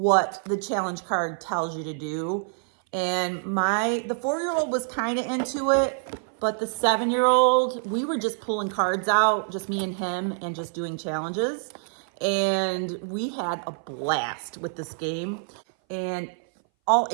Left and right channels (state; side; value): silent; left; 59 dB below the other